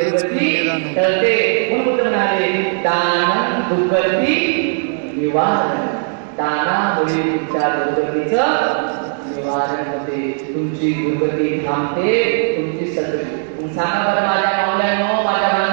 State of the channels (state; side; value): silent; left; digital silence